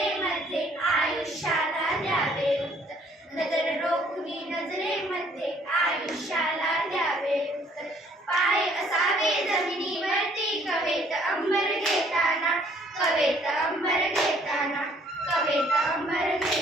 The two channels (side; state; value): both; normal; correlation 0.61